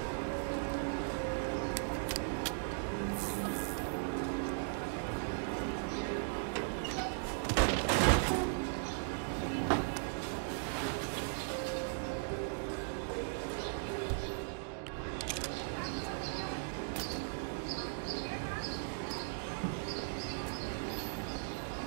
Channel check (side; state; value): left; silent; digital silence